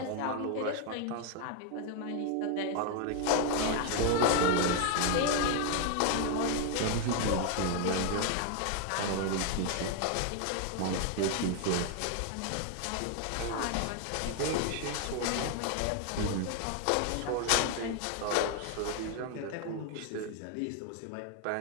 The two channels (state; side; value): different; both; correlation 0.01